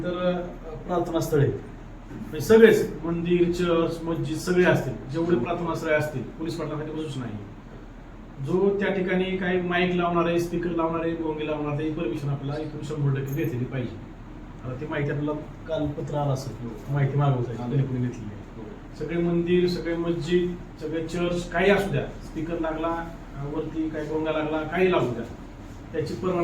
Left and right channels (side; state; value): both; identical; correlation 1.00